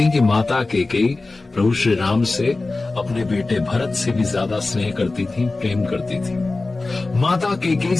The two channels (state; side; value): quieter; right; 3.3 dB